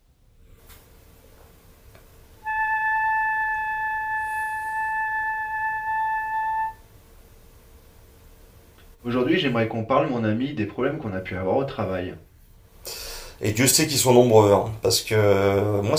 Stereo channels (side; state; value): both; identical; correlation 1.00